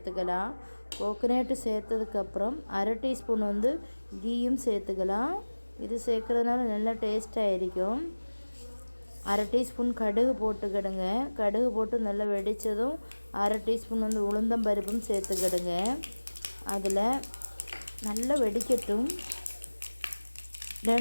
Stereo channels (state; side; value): inverted; both; correlation -1.00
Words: கோகனட் சேர்த்ததுக்கு அப்புறம் 1/2 டீஸ்பூன் வந்து கீயும் சேர்த்துக்கலாம். இது சேர்க்கறதுனால நல்ல டேஸ்டா இருக்கும். 1/2 டீஸ்பூன் கடுகு போட்டுக்கிடுங்க. கடுகு போட்டு நல்லா வெடிச்சதும் 1/2 டீஸ்பூன் வந்து உளுந்தம் பருப்பும் சேர்த்துக்கிடுங்க. அதில் நல்லா வெடிக்கட்டும்.